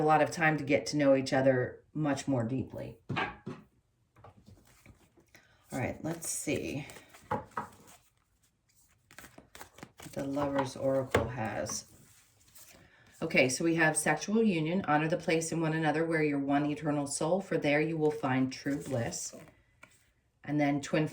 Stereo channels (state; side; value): identical; both; correlation 1.00